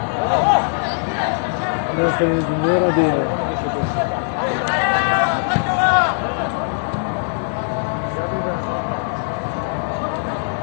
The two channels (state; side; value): silent; right; digital silence